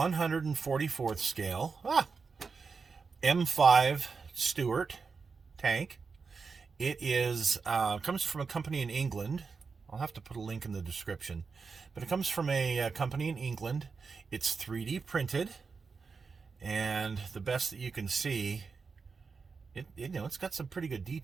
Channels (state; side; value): quieter; left; 5.0 dB